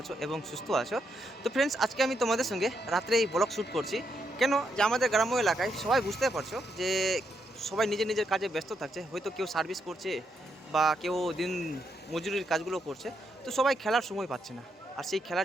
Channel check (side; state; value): both; normal; correlation 0.80